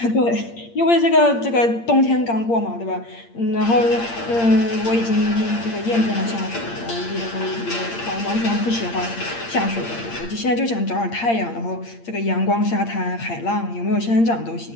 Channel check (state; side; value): late; right; 8.7 ms